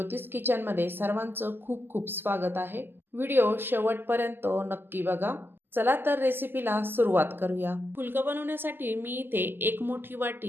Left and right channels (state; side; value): late; left; 0.097 ms